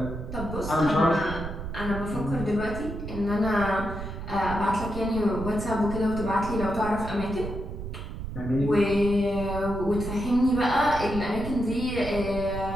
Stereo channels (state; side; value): noise; right; rumble, 8 dB below the sound